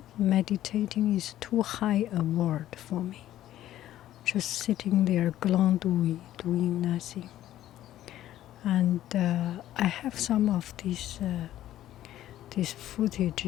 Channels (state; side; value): quieter; right; 13.1 dB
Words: Meditating is too high a word for me. Just sitting there, glandouille, doing nothing. And I have some of these